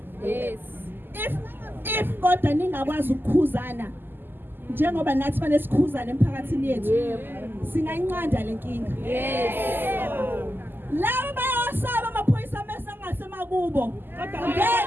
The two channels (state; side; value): late; left; 0.095 ms